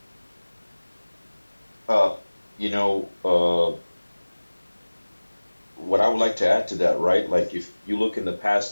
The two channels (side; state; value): both; inverted; correlation -1.00